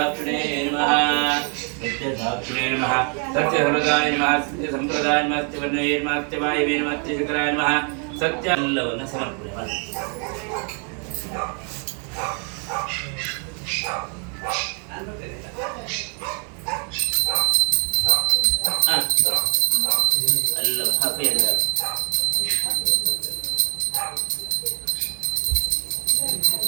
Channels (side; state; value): left; quieter; 39.8 dB